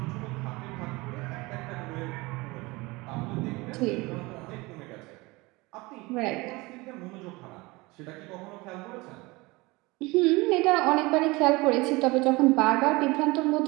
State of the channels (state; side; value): quieter; left; 23.2 dB